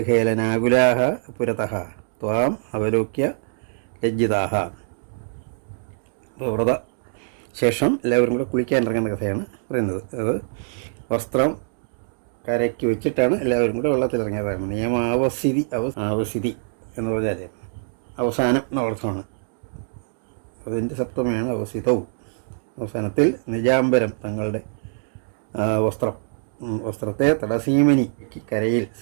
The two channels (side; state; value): left; silent; digital silence